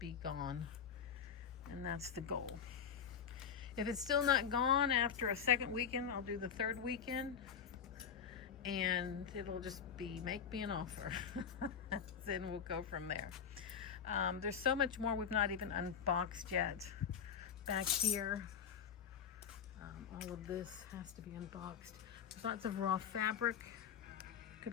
gone, and that's the goal. If it's still not gone after a second weekend, I'll do the third weekend, and it'll just be make me an offer. Then we'll go from there. There's so much more we've not even unboxed yet. Back here, all of this has to be unboxed. There's lots of raw fabric.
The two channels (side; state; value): right; quieter; 7.5 dB